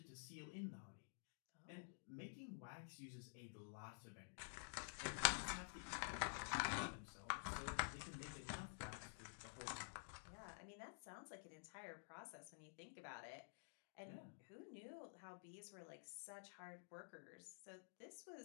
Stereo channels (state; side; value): silent; right; digital silence